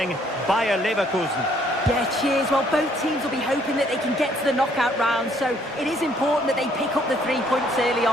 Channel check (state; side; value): normal; both; correlation 0.65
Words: Bayer Leverkusen. Yeah, cheers. Well, both teams will be hoping that they can get to the knockout round, so it is important that they pick up the 3 points early